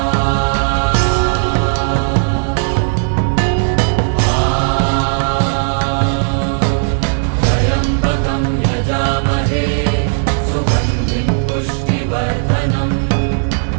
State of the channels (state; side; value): silent; left; digital silence